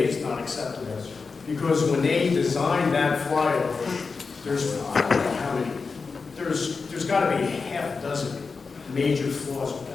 is not acceptable. Because when they designed that flyover, there's, I don't know how many, there's got to be half a dozen major flaws with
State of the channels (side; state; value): right; quieter; 4.7 dB